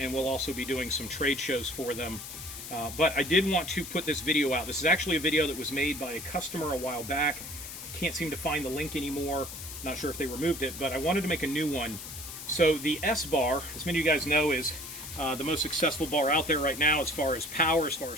we'll also be doing some trade shows for them. But I did want to put this video out. This is actually a video that was made by a customer a while back. Can't seem to find the link anymore. Not sure if they removed it, but I wanted to make a new one. So the sBar, as many of you guys know, is the most successful bar out there right now as far as power, as far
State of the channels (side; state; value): left; noise; hiss, 10 dB below the sound